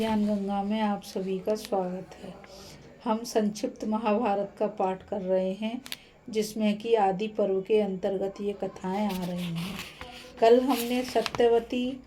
गंगा में आप सभी का स्वागत है। हम संक्षिप्त महाभारत का पाठ कर रहे हैं, जिसमें कि आदि पर्व के अंतर्गत ये कथाएं आ रही हैं। कल हमने सत्यवती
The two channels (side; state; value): both; identical; correlation 1.00